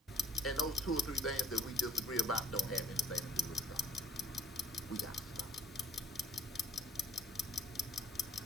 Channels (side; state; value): both; normal; correlation 0.61